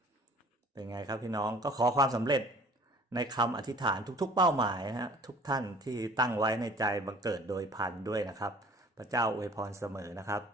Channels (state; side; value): normal; both; correlation 0.50